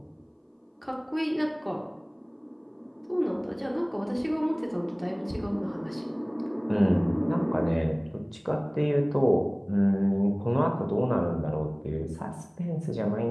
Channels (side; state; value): both; identical; correlation 1.00